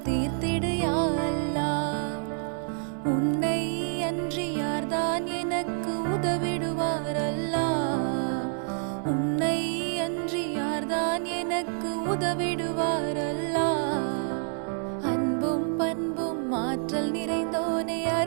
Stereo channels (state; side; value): silent; left; 59 dB below the other